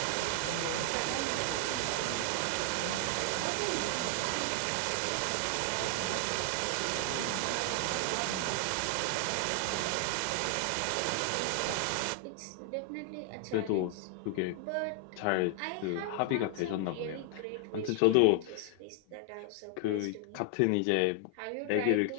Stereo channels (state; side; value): different; both; correlation 0.00